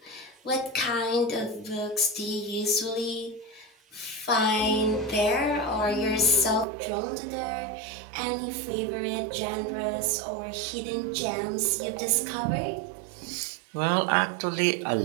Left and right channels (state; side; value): drops out; left; at 6.7 s